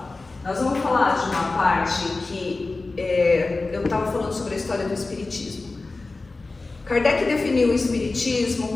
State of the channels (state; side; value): quieter; right; 3.5 dB